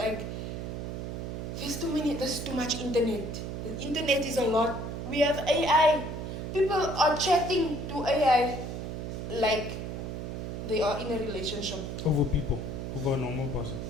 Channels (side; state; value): right; noise; hum, 5 dB below the sound